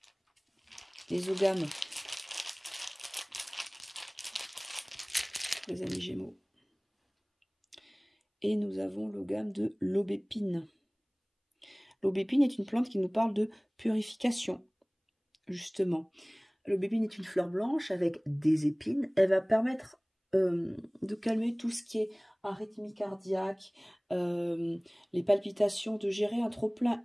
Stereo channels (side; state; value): both; identical; correlation 1.00